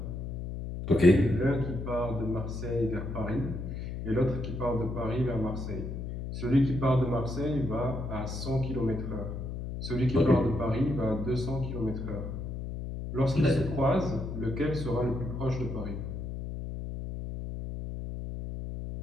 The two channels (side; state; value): left; noise; hum, 6 dB below the sound